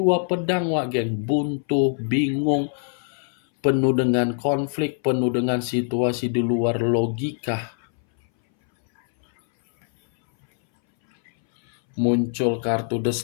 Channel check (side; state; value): right; silent; 62 dB below the other